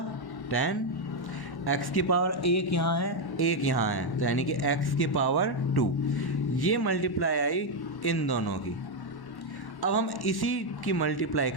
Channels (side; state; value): right; late; 1.1 ms